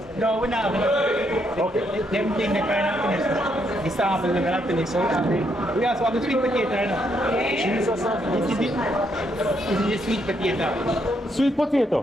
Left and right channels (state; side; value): normal; both; correlation 0.75